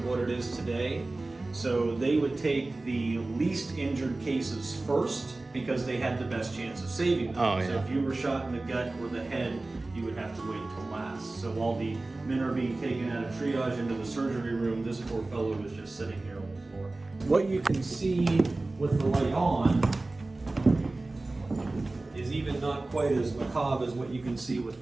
what it is today. So they would take the least injured cases first because they had the best chance of saving them. Oh, yeah. So if you were shot in the gut or the head, you would have to wait till last. So while the men are being taken out of triage into the surgery room, this poor fellow was just sitting here on the floor. What you can see with the light on is even not quite as macabre as what you can see with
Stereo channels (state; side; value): quieter; left; 3.1 dB